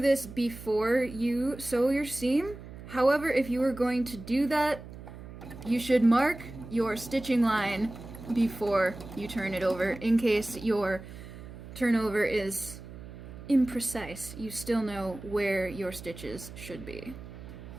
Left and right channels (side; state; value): right; noise; hum, 14 dB below the sound